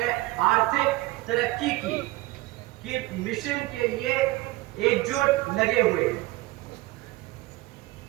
आर्थिक तरक्की की मिशन के लिए एकजुट लगे हुए।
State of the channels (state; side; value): quieter; left; 19.3 dB